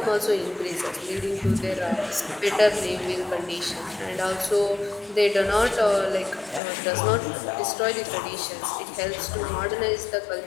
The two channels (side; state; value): right; drops out; at 6.6 s